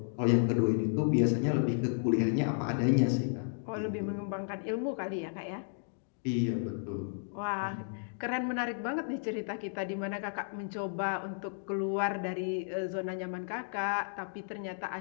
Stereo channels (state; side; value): silent; right; digital silence